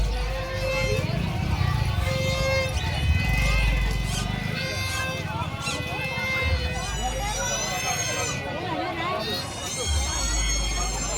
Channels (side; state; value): both; identical; correlation 1.00